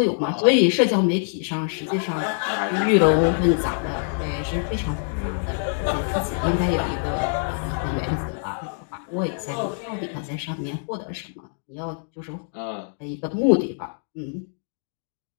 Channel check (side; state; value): right; silent; digital silence